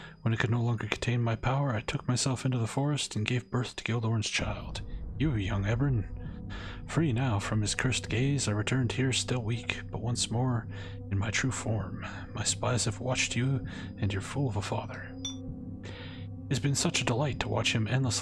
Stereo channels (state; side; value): identical; both; correlation 1.00